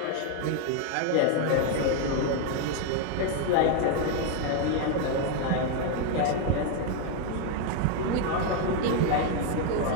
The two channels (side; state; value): both; different; correlation 0.01